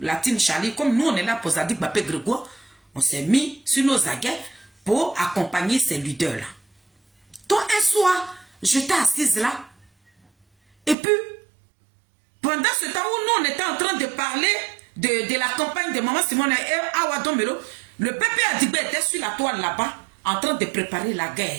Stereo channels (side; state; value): left; drops out; at 11.0 s